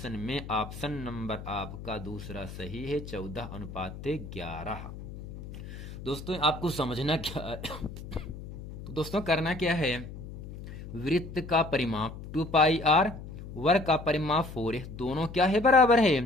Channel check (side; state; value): left; noise; hum, 12 dB below the sound